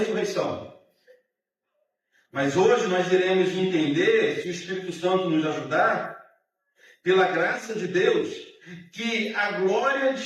Mas hoje nós iremos entender, se o Espírito Santo nos ajudar, pela graça de Deus, que a glória de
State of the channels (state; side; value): identical; both; correlation 1.00